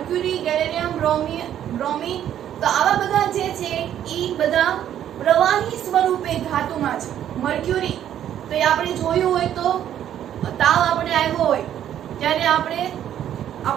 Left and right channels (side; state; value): left; quieter; 10.6 dB